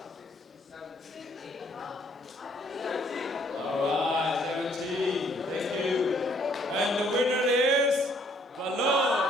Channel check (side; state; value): both; normal; correlation 0.64